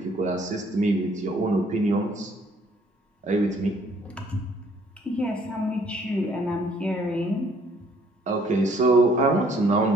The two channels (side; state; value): both; normal; correlation 0.62